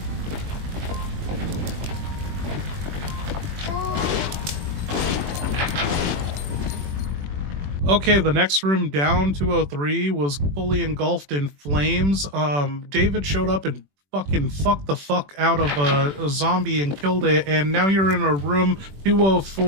Okay, the next room down, 203, was fully engulfed in flames. David showed up and fucking fucked the fuck out of a zombie and killed it, and now you're in a room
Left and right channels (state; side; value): late; left; 21 ms